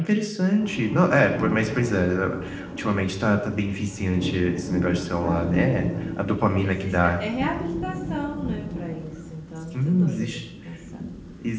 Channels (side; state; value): both; identical; correlation 1.00